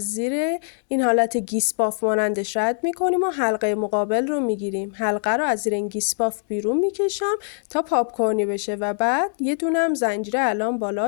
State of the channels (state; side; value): silent; right; digital silence